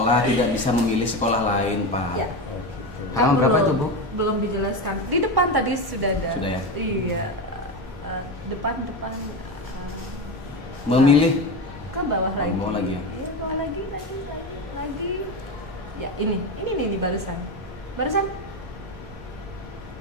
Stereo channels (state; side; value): normal; both; correlation 0.19